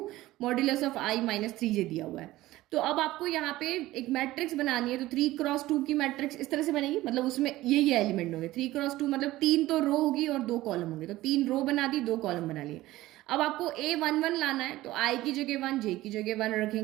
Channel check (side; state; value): left; quieter; 16.8 dB